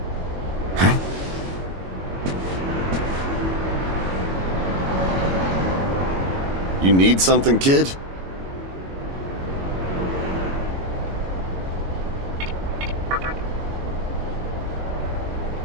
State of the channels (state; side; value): late; left; 22 ms